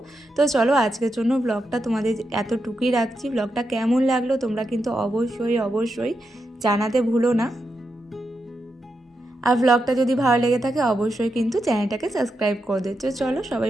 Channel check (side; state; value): both; normal; correlation 0.86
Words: তো চলো, আজকের জন্য ব্লগটা তোমাদের এতটুকুই রাখছি। ব্লগটা কেমন লাগলো তোমরা কিন্তু অবশ্যই অবশ্যই জানাতে ভুলো না। আর ব্লগটা যদি ভালো লেগে থাকে অবশ্যই কিন্তু চ্যানেলটাকে সাবস্ক্রাইব করে দিচ্ছ। চলো, সবাই